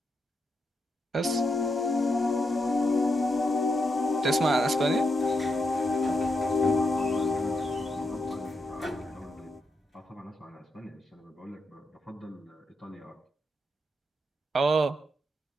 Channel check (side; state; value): both; normal; correlation 0.83